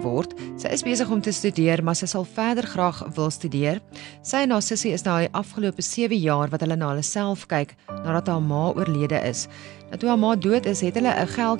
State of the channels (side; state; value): left; quieter; 16.9 dB